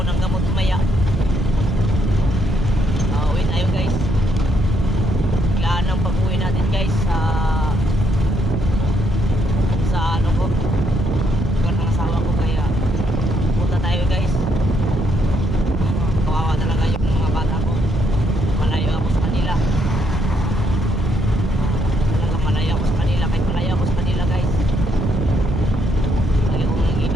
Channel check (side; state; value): both; normal; correlation 0.74